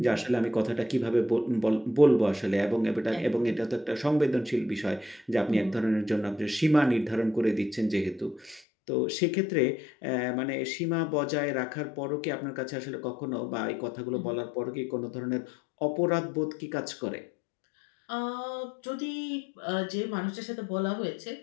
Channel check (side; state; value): right; drops out; at 8.6 s